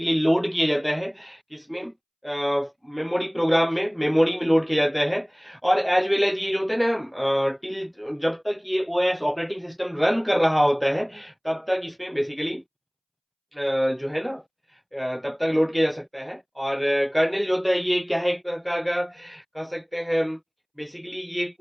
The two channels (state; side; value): identical; both; correlation 1.00